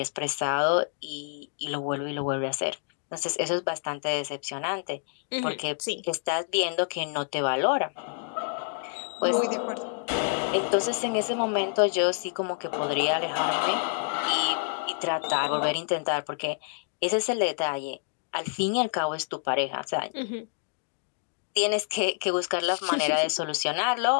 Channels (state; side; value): silent; right; 59 dB below the other